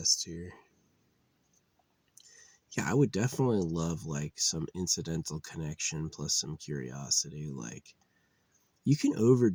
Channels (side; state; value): both; identical; correlation 1.00